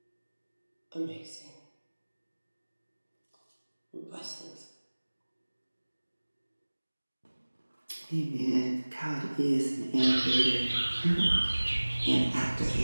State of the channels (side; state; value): both; inverted; correlation -1.00